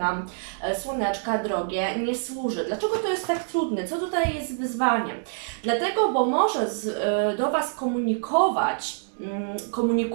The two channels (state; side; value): silent; left; digital silence